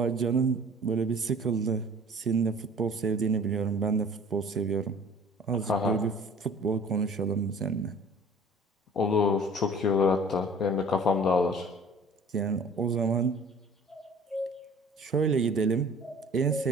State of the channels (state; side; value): normal; both; correlation 0.48